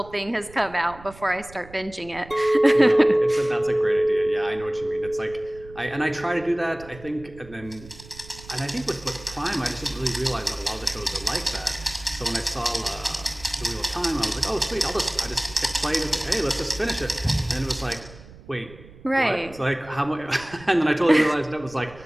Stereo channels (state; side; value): noise; right; rumble, 20 dB below the sound